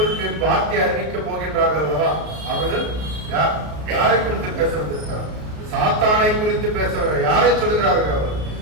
வார்த்தை அறிவிக்க போகின்றார்கள் அல்லவா, அவர்கள் யாரை குறித்து பேசுவதற்காக சாத்தானை குறித்து பேசுவார்கள். யாரை சொல்கிறார்கள்? அவர்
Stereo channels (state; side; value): late; left; 33 ms